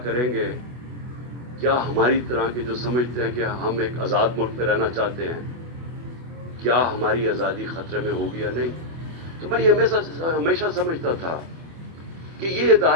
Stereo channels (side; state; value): left; late; 25 ms